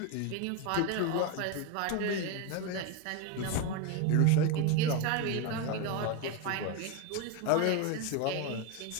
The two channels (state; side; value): different; both; correlation 0.03